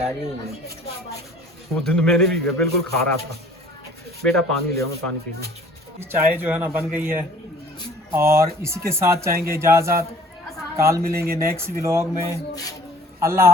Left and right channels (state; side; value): normal; both; correlation 0.51